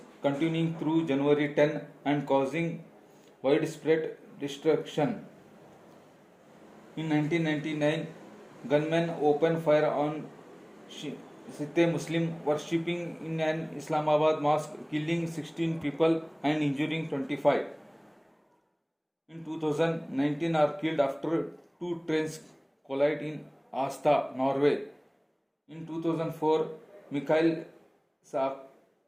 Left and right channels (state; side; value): identical; both; correlation 1.00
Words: continuing through January 10 and causing widespread destruction. In 1999, gunmen opened fire on Sikh Muslim worshipping in an Islamabad mosque, killing 16 people and injuring 25. In 2019 are killed after 2 trains collide in Asta, Norway. In 2004, Mikhail